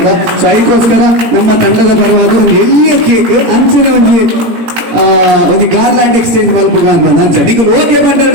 ಸೊ ಐಕೋಸ್ಕರ ನಮ್ಮ ತಂಡದ ಪರವಾದ ಒಂದು ಎಲ್ಲಿಯ ಕೇಕ್ ಅಂಚಿನ ಒಂದು ಗಾರ್ಲ್ಯಾಂಡ್ ಎಕ್ಸ್ಚೇಂಜ್ ಮಲ್ಪುಗ ಅಂತ ಅಂಚ ನಿಗಲ್ ಓಕೆ ಪಂಡರ್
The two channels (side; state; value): left; late; 17 ms